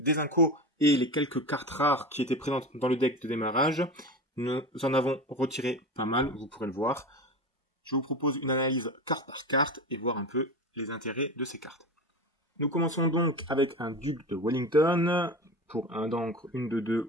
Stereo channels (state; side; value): normal; both; correlation 0.27